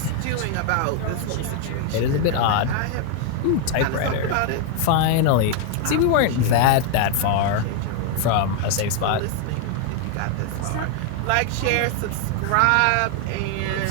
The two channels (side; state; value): both; different; correlation 0.00